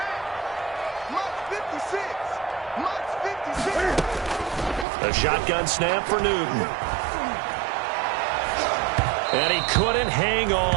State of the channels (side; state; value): left; drops out; at 4.9 s